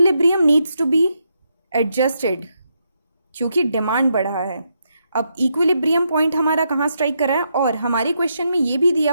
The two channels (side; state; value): both; inverted; correlation -0.80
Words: needs to be adjusted, क्योंकि डिमांड बढ़ा है। अब इक्विलिब्रियम पॉइंट हमारा कहाँ स्ट्राइक कर रहा है? और हमारे क्वेश्चन में ये भी दिया